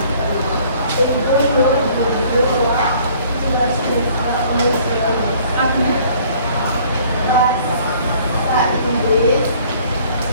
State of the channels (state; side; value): inverted; both; correlation -0.56